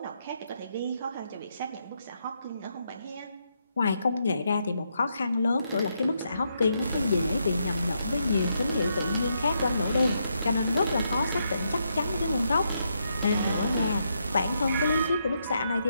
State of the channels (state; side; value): inverted; both; correlation -0.79